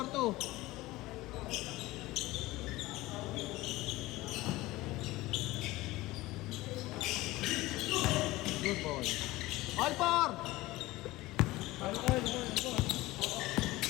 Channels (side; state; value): right; quieter; 18.9 dB